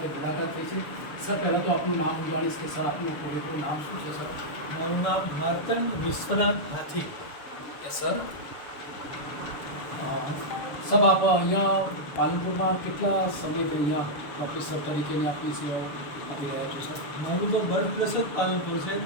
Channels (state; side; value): late; right; 7.0 ms